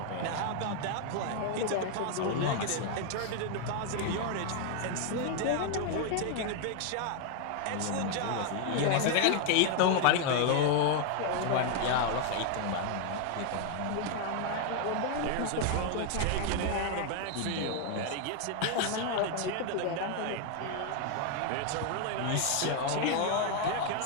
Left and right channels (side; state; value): both; different; correlation 0.00